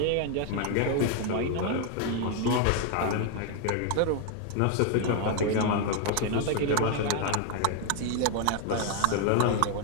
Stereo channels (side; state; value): both; different; correlation 0.01